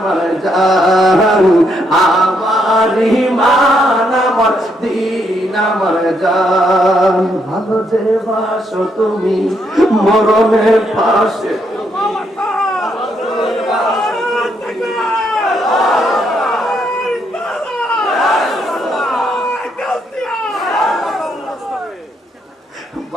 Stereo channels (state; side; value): normal; both; correlation 0.75